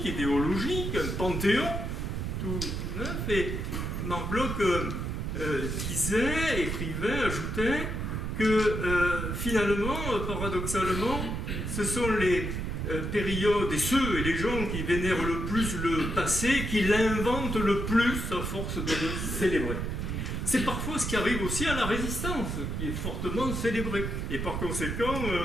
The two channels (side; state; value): right; noise; rumble, 3 dB below the sound